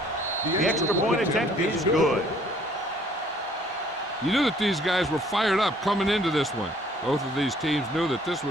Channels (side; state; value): both; normal; correlation 0.60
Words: The extra point attempt is good. You knew that these guys were fired up coming into this one. Both of these teams knew that this